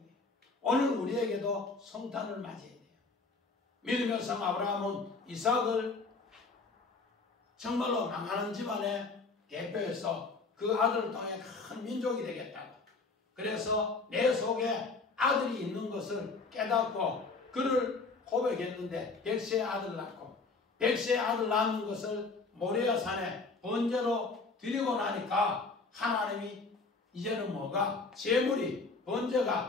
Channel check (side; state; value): right; quieter; 4.0 dB